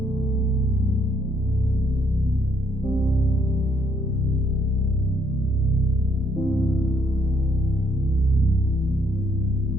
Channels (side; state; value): both; normal; correlation 0.69